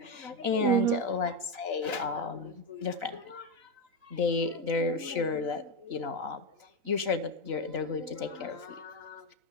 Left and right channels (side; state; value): left; late; 3.9 ms